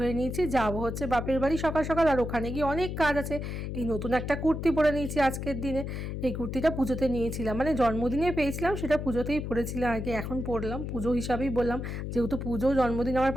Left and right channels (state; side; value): noise; left; hum, 5 dB below the sound